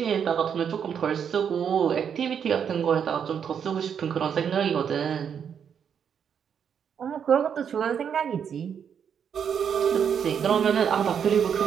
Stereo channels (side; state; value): left; quieter; 7.7 dB